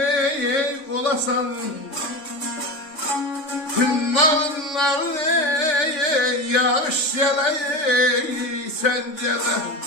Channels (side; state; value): right; late; 3.6 ms